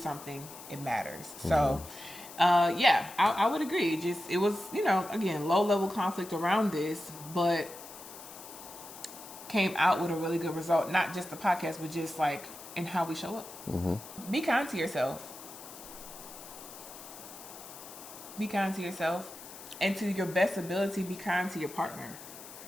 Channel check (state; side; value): noise; left; hiss, 15 dB below the sound